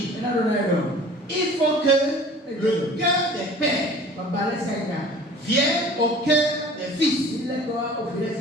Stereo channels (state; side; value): normal; both; correlation 0.45